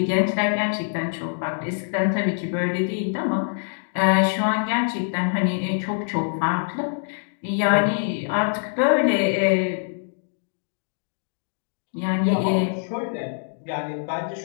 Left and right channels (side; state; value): right; silent; digital silence